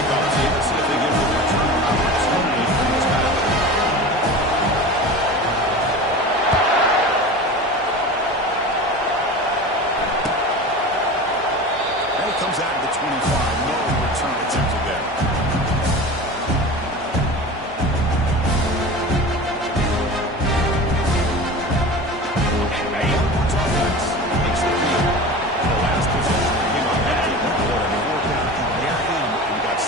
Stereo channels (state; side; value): normal; both; correlation 0.33